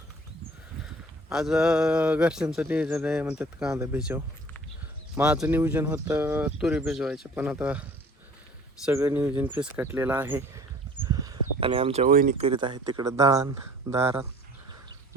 आज घरच्यांचं नियोजन आहे म्हणतात कांदा भिजव. माझं नियोजन होतं तुरी भिजवायचं, पण आता सगळं नियोजन फिसकटलेलं आहे आणि आमच्या वहिनी करीत आहेत तिकडं दळण दारात.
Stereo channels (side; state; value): both; normal; correlation 0.50